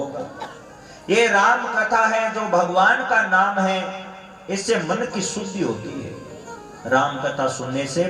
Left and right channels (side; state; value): both; identical; correlation 1.00